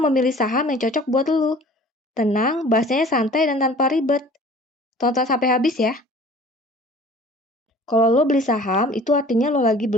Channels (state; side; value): normal; both; correlation 0.47